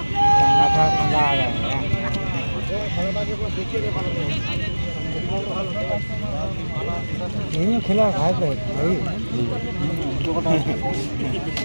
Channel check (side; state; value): both; inverted; correlation -1.00